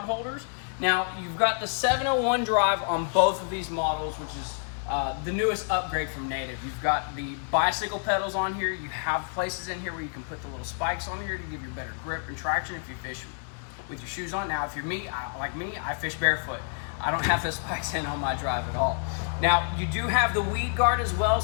holders. Now, you've got the 701 drive on both of these models, which is the newest upgrade from Native. You've got the bicycle pedals on here. You have places in here where you can put the little spikes on here to give you better grip and traction if you fish with your shoes on. Now, if you're like me, I fish barefoot. I don't have the spikes in on my drive at all. Now, you do have the weed guard as well,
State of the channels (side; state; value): right; silent; 59 dB below the other